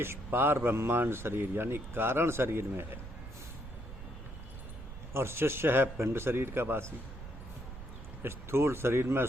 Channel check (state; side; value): noise; right; rumble, 12 dB below the sound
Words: पार ब्रह्मांड शरीर यानी कारण शरीर में है, और शिष्य है पिंड शरीर का वासी। स्थूल शरीर में